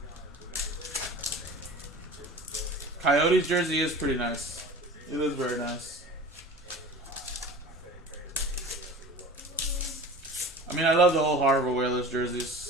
Coyotes jersey is pretty nice. It is very nice. I mean, I love the old Harvard Whalers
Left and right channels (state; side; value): normal; both; correlation 0.38